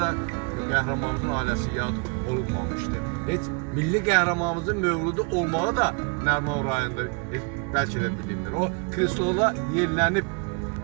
qəhrəmanımızın ailəsi yad olunmamışdı. Heç milli qəhrəmanımızın mövludu olmağı da Nəriman rayonunda bəlkə də bilinir. O krestola yerlənib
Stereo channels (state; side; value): quieter; left; 33.2 dB